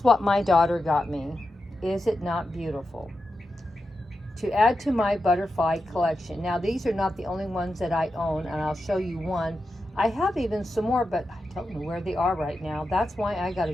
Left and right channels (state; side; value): normal; both; correlation 0.90